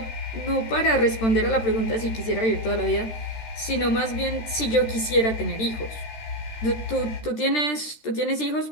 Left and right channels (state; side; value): late; right; 13 ms